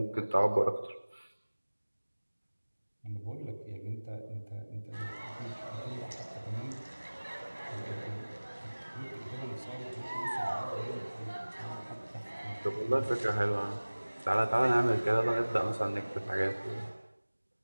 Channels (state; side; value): inverted; both; correlation -1.00